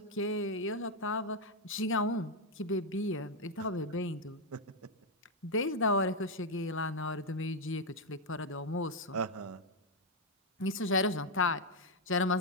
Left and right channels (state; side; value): normal; both; correlation 0.01